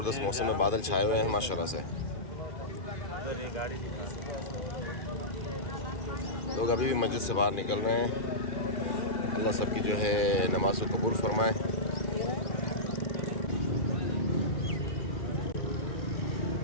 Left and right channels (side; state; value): right; late; 2.4 ms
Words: मौसम है, बादल छाए हुए हैं माशाल्लाह से। लोग अभी भी मस्जिद से बाहर निकल रहे हैं। अल्लाह सबकी जो है नमाज को कबूल फरमाए।